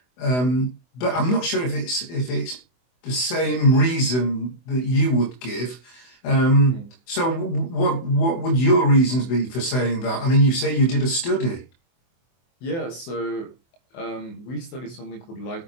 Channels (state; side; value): late; right; 24 ms